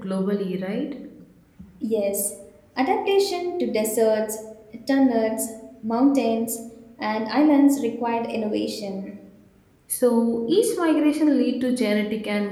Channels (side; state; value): both; identical; correlation 1.00